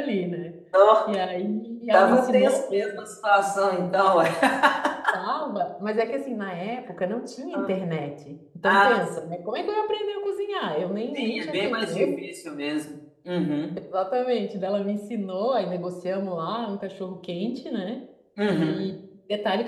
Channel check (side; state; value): both; identical; correlation 1.00